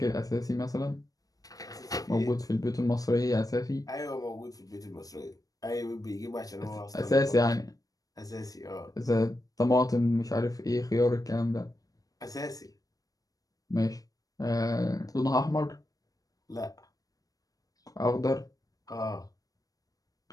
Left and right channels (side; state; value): right; late; 0.18 ms